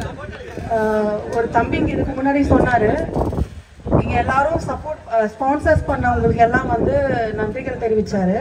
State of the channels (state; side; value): identical; both; correlation 1.00